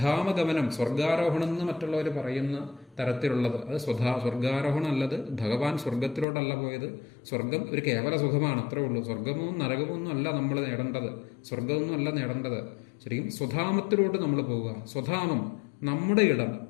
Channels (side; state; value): right; drops out; at 6.2 s